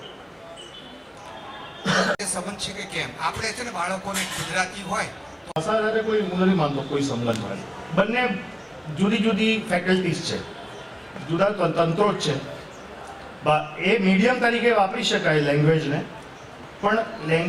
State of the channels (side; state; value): both; identical; correlation 1.00